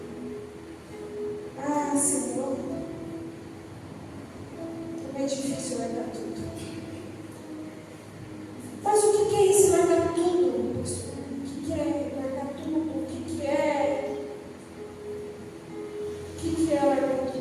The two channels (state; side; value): identical; both; correlation 1.00